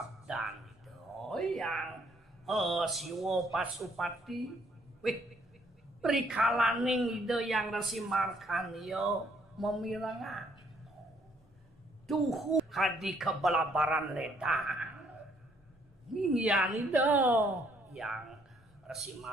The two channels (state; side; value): normal; both; correlation 0.67